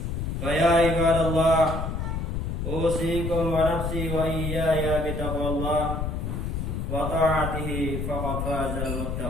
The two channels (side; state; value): left; noise; rumble, 3 dB below the sound